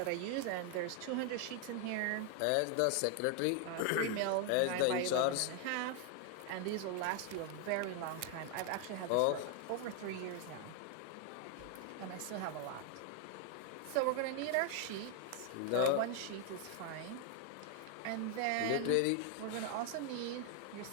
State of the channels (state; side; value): different; both; correlation 0.00